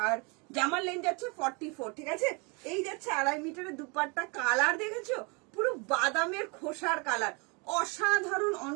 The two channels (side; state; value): left; quieter; 30.9 dB